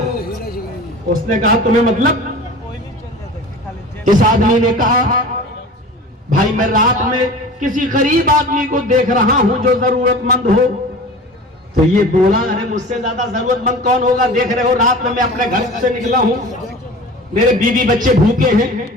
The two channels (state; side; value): normal; both; correlation 0.38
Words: उसने कहा तुम्हें मतलब? इस आदमी ने कहा, भाई मैं रात में किसी गरीब आदमी को देख रहा हूं जो जरूरतमंद हो। तो ये बोला, अरे मुझसे ज्यादा जरूरतमंद कौन होगा? देख रहे हो रात में मैं अपने घर से निकला हूं, मेरे बीवी बच्चे भूखे हैं।